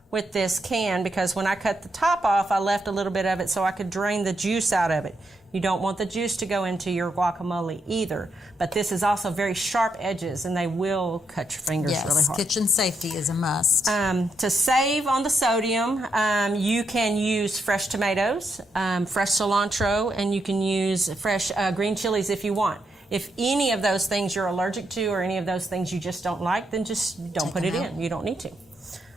with this can, because when I cut the top off, I left a little bit of it so I could drain the juice out of it. You don't want the juice to go into your guacamole either. But this is also very sharp edges, and they will cut your fingers really hard. Kitchen safety is a must. To save on the sodium, you can use fresh tomatoes, fresh cilantro, and you can use fresh green chilies if you want. If any of those things you're allergic to or any of those things you just don't like, then just don't put it in. You don't need to.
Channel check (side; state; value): both; normal; correlation 0.80